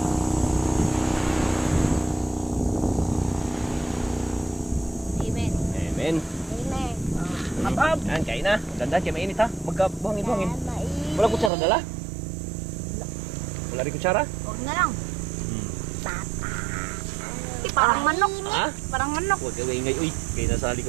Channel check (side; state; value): left; drops out; at 11.5 s